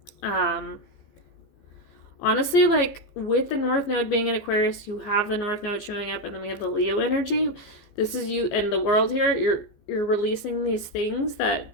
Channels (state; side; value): late; right; 15 ms